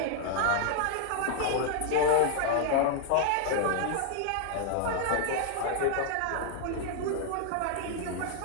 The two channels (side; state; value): both; different; correlation 0.00